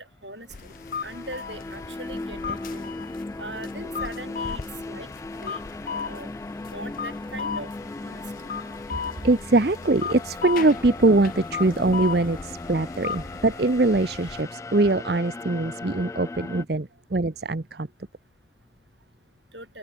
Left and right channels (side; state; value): both; normal; correlation 0.38